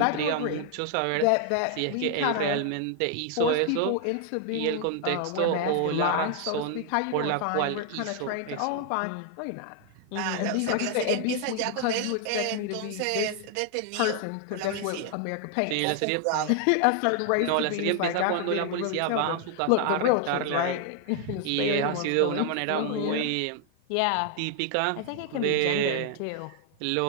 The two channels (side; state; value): both; different; correlation 0.00